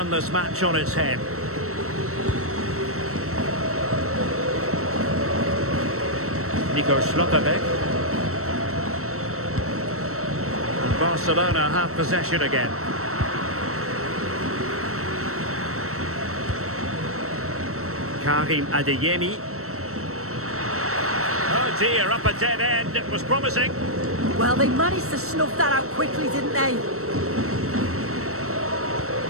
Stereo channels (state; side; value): late; left; 0.63 ms